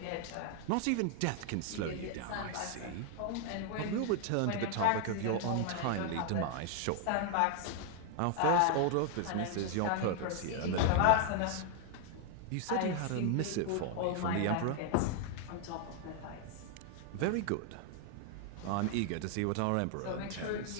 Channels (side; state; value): both; different; correlation 0.00